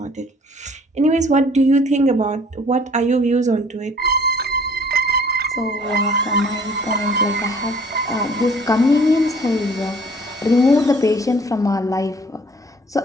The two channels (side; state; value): both; normal; correlation 0.54